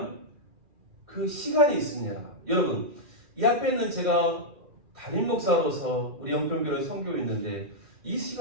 그 시간이 있습니다. 여러분, 이 앞에 있는 제가 담임 목사로서 우리 영평교를 섬기고 있는데 이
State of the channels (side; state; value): left; late; 2.4 ms